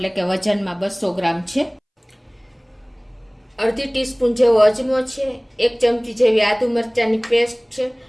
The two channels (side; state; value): both; identical; correlation 1.00